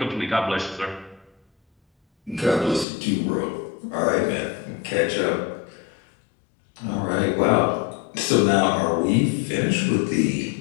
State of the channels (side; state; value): right; drops out; at 2.9 s